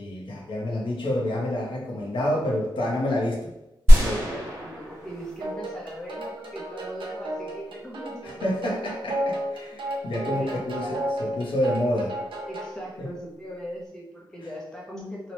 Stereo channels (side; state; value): both; normal; correlation 0.88